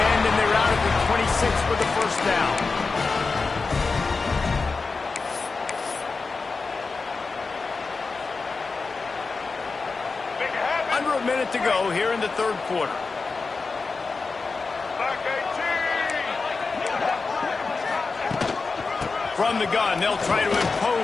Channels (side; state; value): right; quieter; 4.3 dB